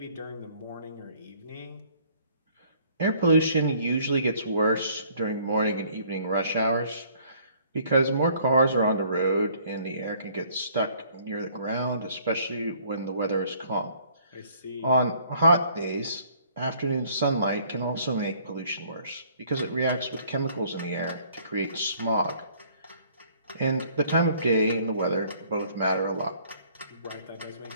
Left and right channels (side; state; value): both; inverted; correlation -0.60